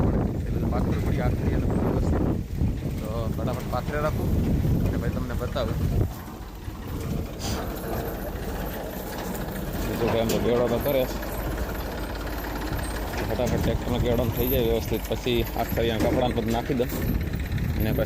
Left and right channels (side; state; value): both; identical; correlation 1.00